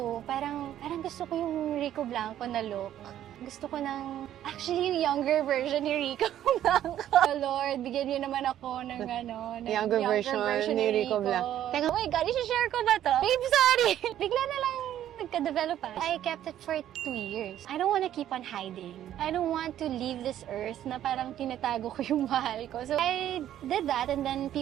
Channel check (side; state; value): left; quieter; 11.6 dB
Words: parang gusto ko yung Rico Blanco na look. Gusto ko actually yung younger version ni Rico Blanco. Oh Lord, bigyan niyo naman ako ng Younger version ni Rico Blanco. Oh my God, i-share ko ba to? Babe, sorry! Bigla na lang nagka-develop pa. I kept it for 2 years. I don't want to keep on hiding. I don't want to leave this earth na parang tinatago ko yung mahal ko. So I did that and then